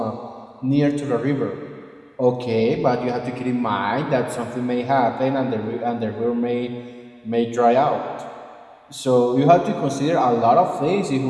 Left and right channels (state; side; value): identical; both; correlation 1.00